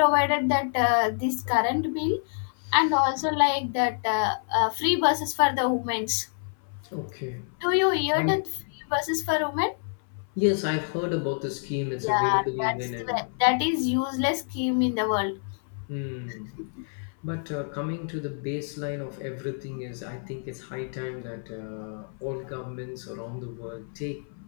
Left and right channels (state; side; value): silent; right; 58 dB below the other